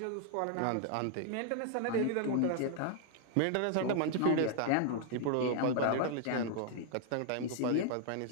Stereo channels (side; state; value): both; different; correlation 0.00